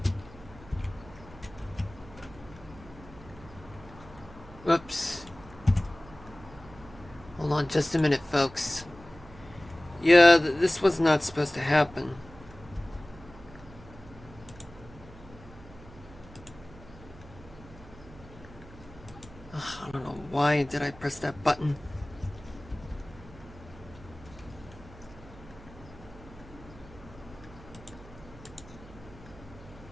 Whoops. Hold on just a minute, folks. Yeah, this was not supposed to happen. Ugh, I don't know why did I press that button.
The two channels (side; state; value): right; noise; hum, 19 dB below the sound